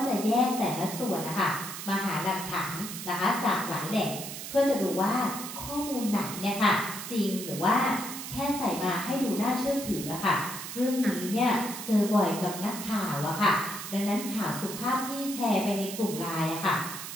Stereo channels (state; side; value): noise; right; hiss, 8 dB below the sound